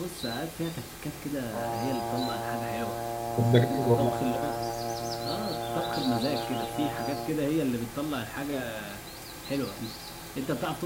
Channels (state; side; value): identical; both; correlation 1.00